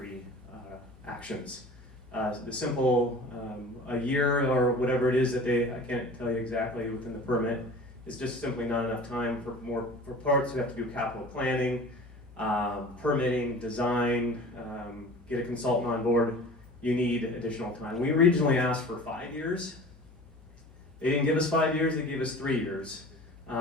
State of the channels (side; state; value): both; normal; correlation 0.41